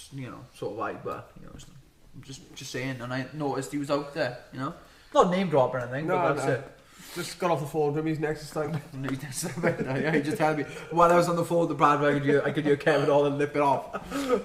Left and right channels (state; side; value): identical; both; correlation 1.00